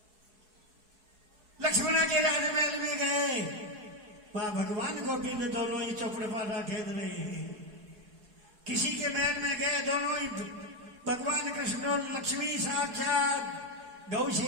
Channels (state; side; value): late; left; 4.7 ms